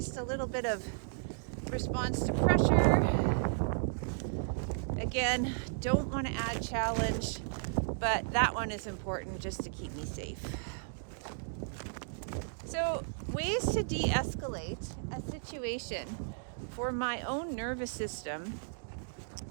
a little bit of response to pressure. Again, don't want to add challenge, but that one is important just to keep me safe. So, ways to de-escalate a situation for my own nervous system.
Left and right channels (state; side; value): silent; left; digital silence